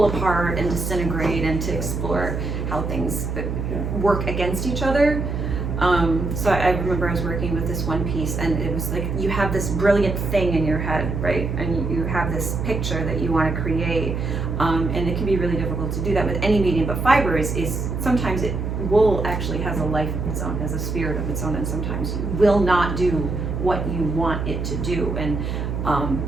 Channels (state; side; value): noise; right; hum, 3 dB below the sound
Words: apart and disintegrate and to explore how things work against each other. So I remember I was working with this one piece, and it was like you have this brilliant thing in your head, right? And you have this picture that you want to create, and it can be really difficult to do that with any medium. But fiber is sometimes wool actually has a life of its own, has a spirit of its own, and sometimes will not do what you want it to do. And